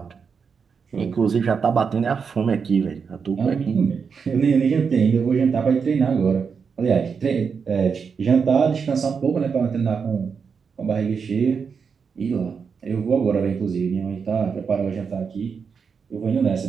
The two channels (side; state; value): left; quieter; 6.0 dB